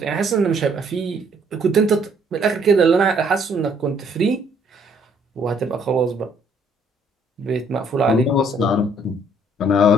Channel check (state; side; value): normal; both; correlation 0.64